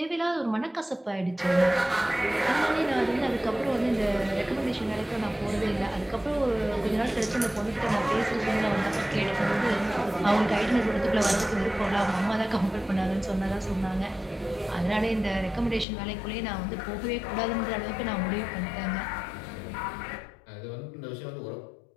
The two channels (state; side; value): drops out; right; at 15.9 s